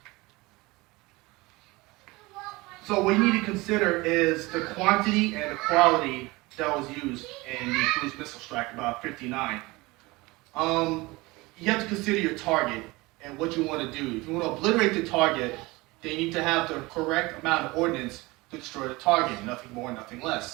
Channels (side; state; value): left; quieter; 22.4 dB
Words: so what you need to consider is the quantity and the quality that was used in the cruise missile strike, about 59. You have to consider your target and what you want to do. If you want to obliterate the target, then you need to have the correct amount of ordnance to destroy the target, nothing more, nothing